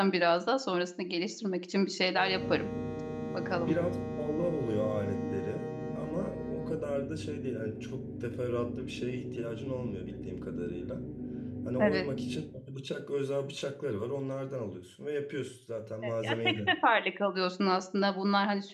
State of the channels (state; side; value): identical; both; correlation 1.00